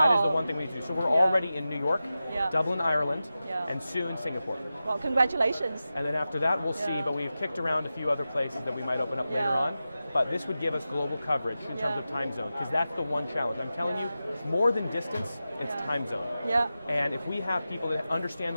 is the one thing we need to do. So we're already in New York, Dublin, Ireland, and soon Singapore. Well, congratulations. And then after that, we'll see, but we've kicked around a few other places that we might open up later on. But this would give us global coverage in terms of time zone, because that's the one challenge. I'm telling you, more than distance, it's time zone. Yeah. And if we have people that understand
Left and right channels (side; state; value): both; inverted; correlation -0.93